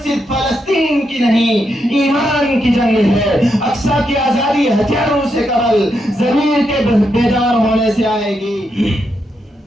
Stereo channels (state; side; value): normal; both; correlation 0.82